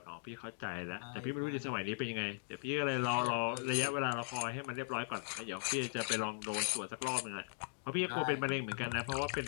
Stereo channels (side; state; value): right; silent; digital silence